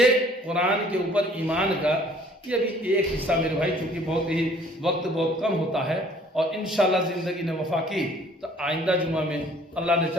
قرآن کے اوپر ایمان کا یہ ابھی ایک حصہ میرے بھائی، چونکہ بہت ہی وقت بہت کم ہوتا ہے، اور انشاءاللہ زندگی نے وفا کی تو آئندہ جمعہ میں اللہ نے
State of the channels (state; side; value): normal; both; correlation 0.56